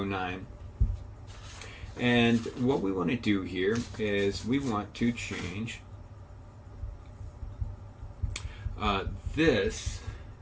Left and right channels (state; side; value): identical; both; correlation 1.00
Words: And what we want to do here is we want to change this